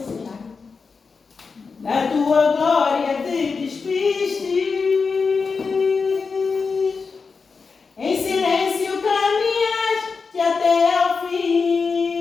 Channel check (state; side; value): quieter; right; 4.9 dB